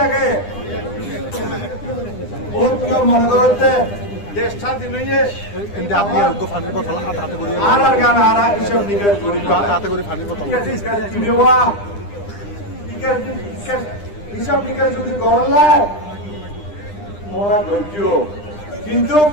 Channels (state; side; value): late; right; 9.9 ms